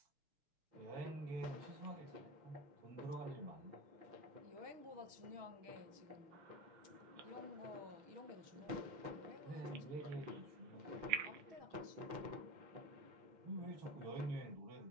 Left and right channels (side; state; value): left; late; 6.3 ms